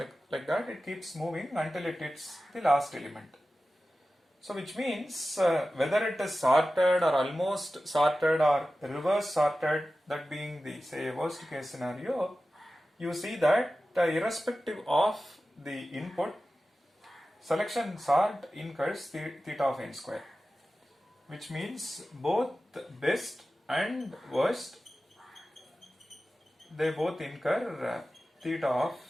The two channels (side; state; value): both; normal; correlation 0.95